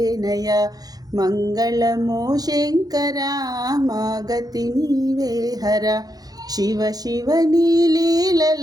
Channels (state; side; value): late; left; 0.19 ms